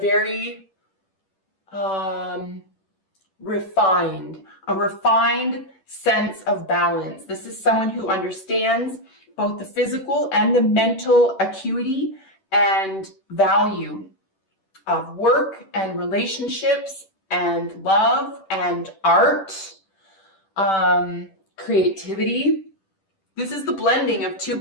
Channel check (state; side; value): late; right; 10 ms